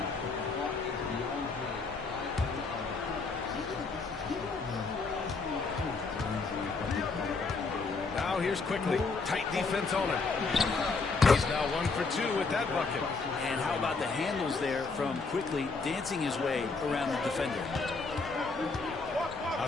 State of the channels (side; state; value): right; quieter; 4.2 dB